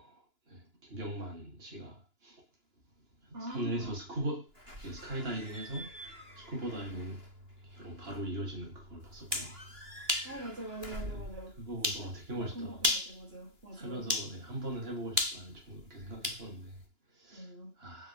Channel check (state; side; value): late; left; 2.9 ms